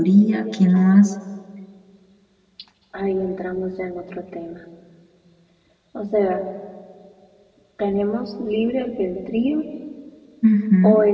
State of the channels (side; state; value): both; identical; correlation 1.00